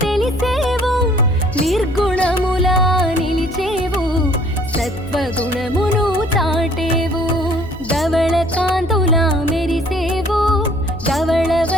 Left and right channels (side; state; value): left; noise; hum, 15 dB below the sound